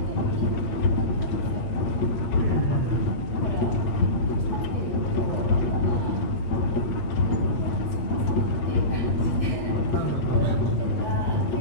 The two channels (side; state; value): right; late; 8.6 ms